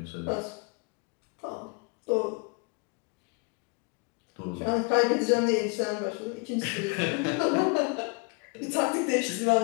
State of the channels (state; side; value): quieter; right; 31.3 dB